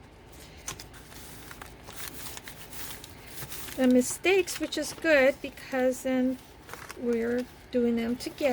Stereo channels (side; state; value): both; identical; correlation 1.00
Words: the mistakes, which is good because then we're doing them